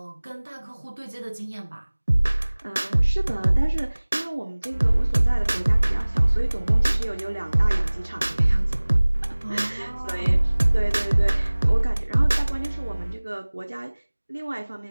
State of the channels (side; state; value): both; inverted; correlation -1.00